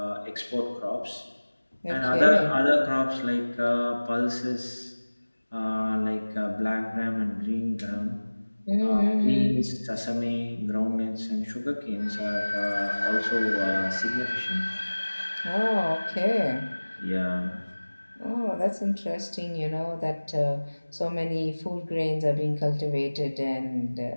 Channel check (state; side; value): inverted; both; correlation -1.00